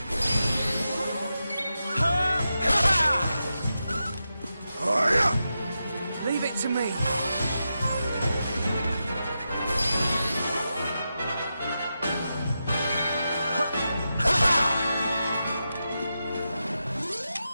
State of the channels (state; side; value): inverted; both; correlation -0.89